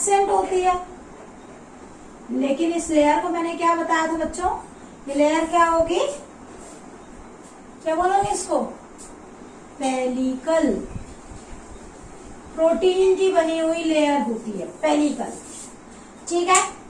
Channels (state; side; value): identical; both; correlation 1.00